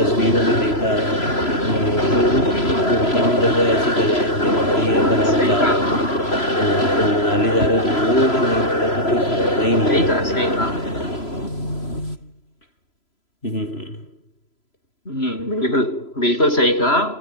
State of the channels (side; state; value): right; late; 3.0 ms